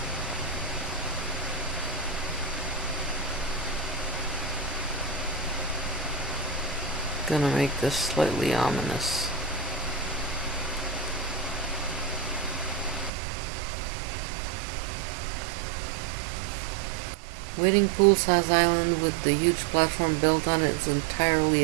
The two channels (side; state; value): left; drops out; at 13.1 s